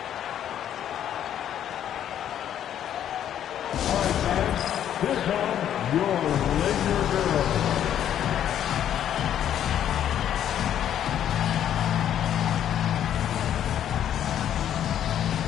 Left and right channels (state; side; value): quieter; right; 10.3 dB